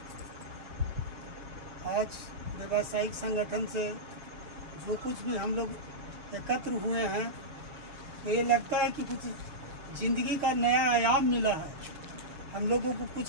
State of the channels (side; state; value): left; late; 6.6 ms